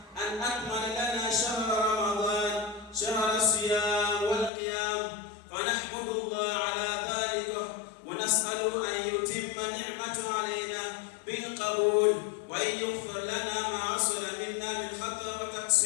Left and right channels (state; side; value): drops out; right; at 4.5 s